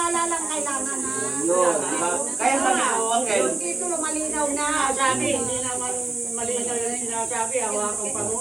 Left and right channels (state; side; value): quieter; left; 3.3 dB